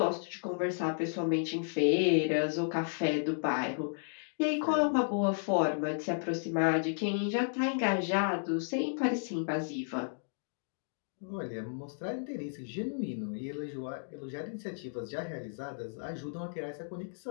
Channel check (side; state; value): right; silent; digital silence